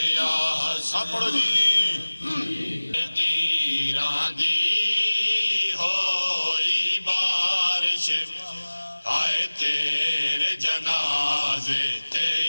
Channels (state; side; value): inverted; both; correlation -1.00